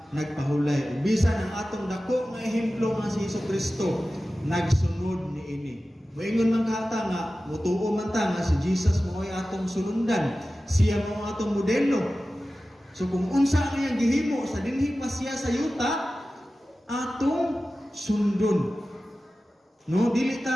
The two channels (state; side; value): normal; both; correlation 0.95